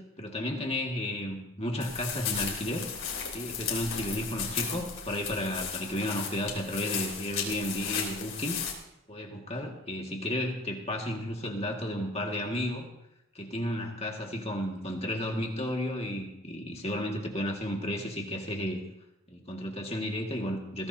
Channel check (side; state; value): both; normal; correlation 0.48